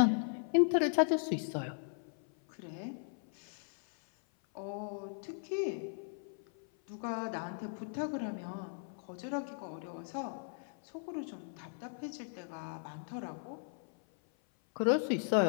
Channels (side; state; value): right; silent; 53 dB below the other